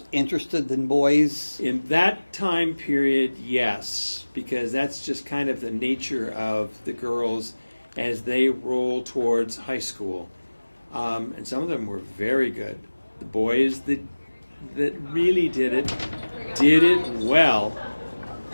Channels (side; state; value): both; inverted; correlation -1.00